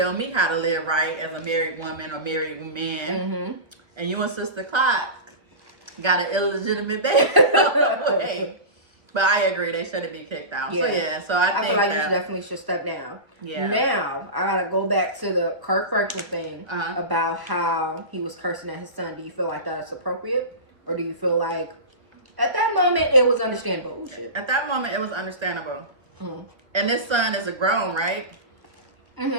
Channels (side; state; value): left; late; 1.3 ms